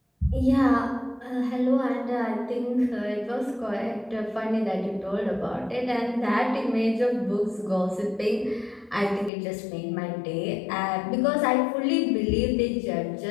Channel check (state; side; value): drops out; right; at 9.3 s